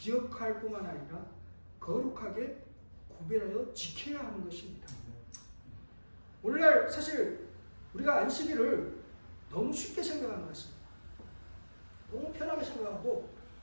뿐만 아니라 거룩하게 구별하여 지켜야 하는 것입니다. 오늘날 사실 우리가 안식일을 너무 쉽게 생각하는 것 같습니다. 너무 편하게 생각하고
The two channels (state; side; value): inverted; both; correlation -1.00